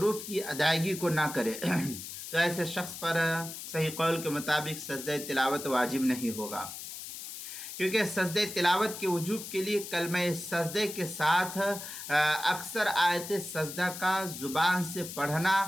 کی ادائیگی کو نہ کرے تو ایسے شخص پر صحیح قول کے مطابق سجدہ تلاوت واجب نہیں ہوگا، کیونکہ سجدہ تلاوت کے وجوب کے لیے کلمہ سجدے کے ساتھ اکثر آیت سجدہ کا زبان سے پڑھنا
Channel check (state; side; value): noise; left; hiss, 10 dB below the sound